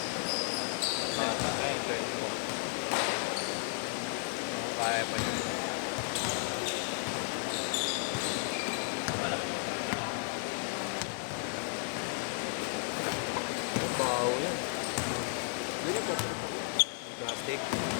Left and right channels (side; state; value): right; silent; 55 dB below the other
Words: Bata, eh, 24. Ako kaya pa yun. Bawo yan. Hindi na papalitan. Plastic.